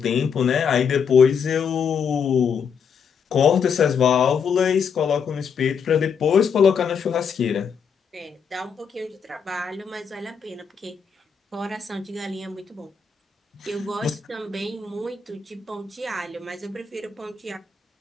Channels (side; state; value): right; quieter; 6.5 dB